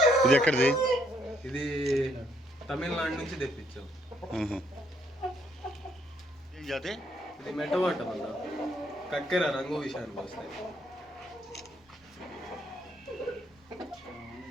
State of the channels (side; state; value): both; normal; correlation 0.71